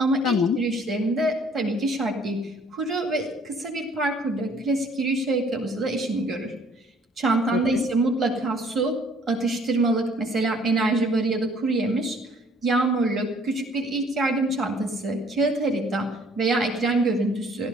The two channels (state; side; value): normal; both; correlation 0.59